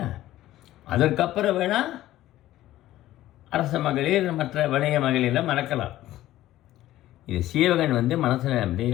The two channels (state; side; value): quieter; right; 14.6 dB